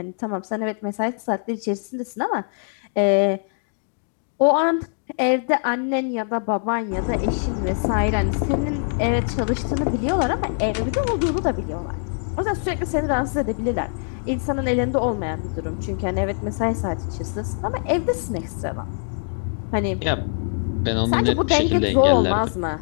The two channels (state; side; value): silent; right; digital silence